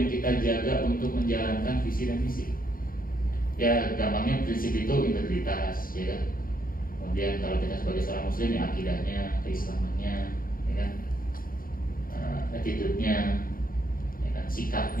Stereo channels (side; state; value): right; late; 0.42 ms